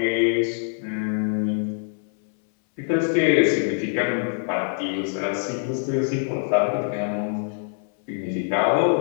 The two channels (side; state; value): right; silent; 63 dB below the other